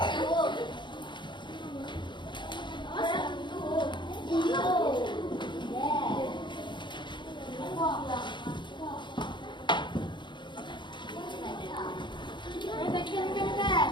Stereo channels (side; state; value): right; late; 0.23 ms